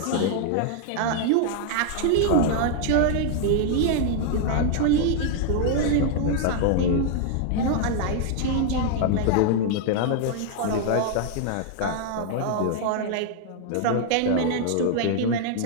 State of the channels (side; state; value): both; different; correlation -0.01